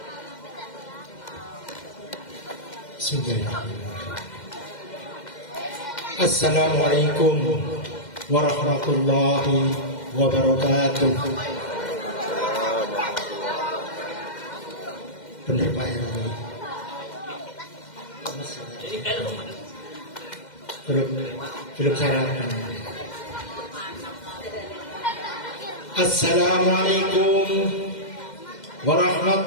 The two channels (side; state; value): right; late; 2.1 ms